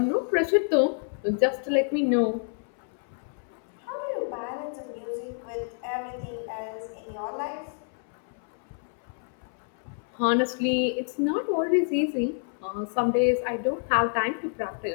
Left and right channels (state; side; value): silent; right; 59 dB below the other